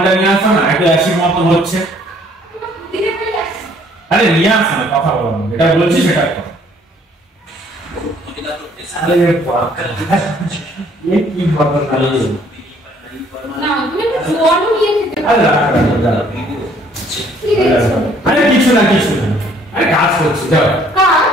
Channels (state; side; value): normal; both; correlation 0.61